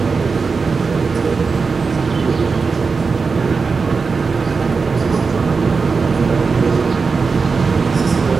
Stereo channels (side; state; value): left; quieter; 4.8 dB